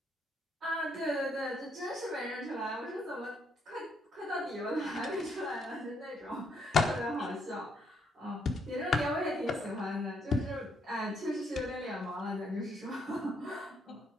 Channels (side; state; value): both; normal; correlation 0.73